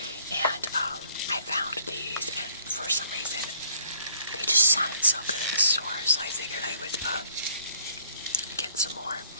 and I found these, and for some reason they just sounded so good in the store, so I figured I would get some more.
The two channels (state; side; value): inverted; both; correlation -0.61